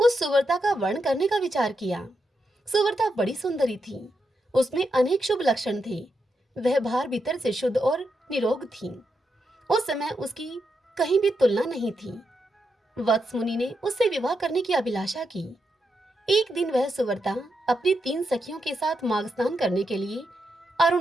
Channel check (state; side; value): normal; both; correlation 0.84